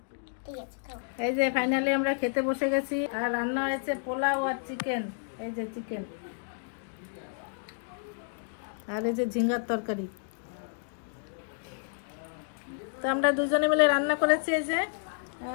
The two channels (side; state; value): right; silent; digital silence